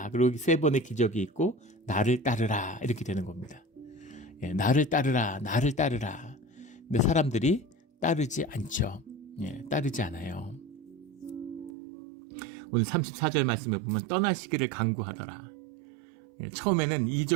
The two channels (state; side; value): drops out; left; at 11.7 s